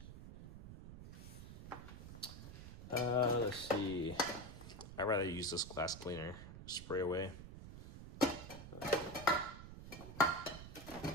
Let's see. I'd rather use this glass cleaner. Spray away. It's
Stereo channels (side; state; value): right; noise; rumble, 12 dB below the sound